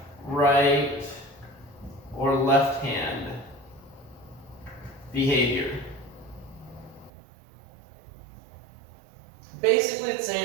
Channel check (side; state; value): left; drops out; at 7.1 s